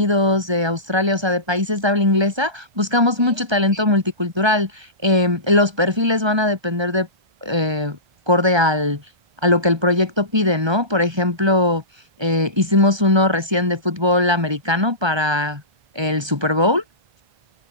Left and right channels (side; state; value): left; late; 1.3 ms